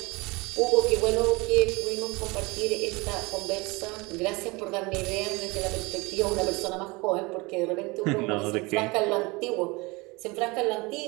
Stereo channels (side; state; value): left; quieter; 25.0 dB